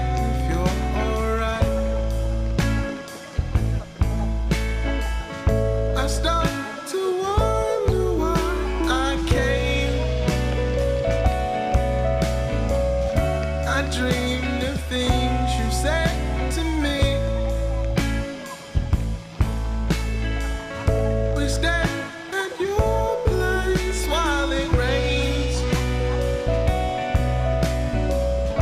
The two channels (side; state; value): both; identical; correlation 1.00